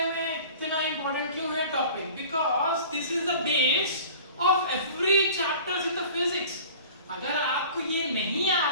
में इतना इंपॉर्टेंट क्यों है topic? Because this is the base of every chapters in the physics. अगर आपको ये नहीं आ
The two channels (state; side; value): inverted; both; correlation -0.42